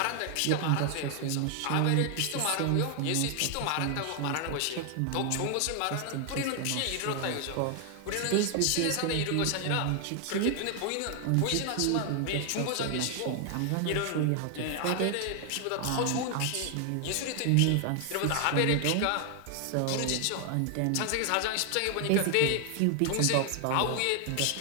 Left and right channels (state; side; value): different; both; correlation 0.00